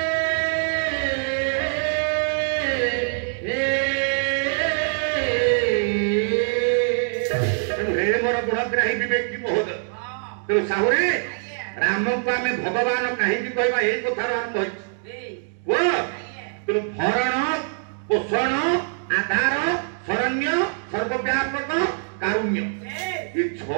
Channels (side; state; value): left; silent; digital silence